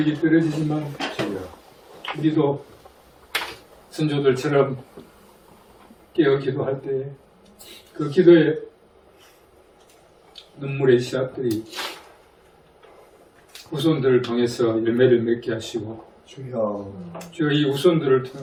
떨어지지만 우리도 선조들처럼 깨어 기도할 때 그 기도의 눈물의 씨앗들이 후손들을 통해서 열매를 맺게 하시고 주여. 주여 이 후손들을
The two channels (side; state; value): both; identical; correlation 1.00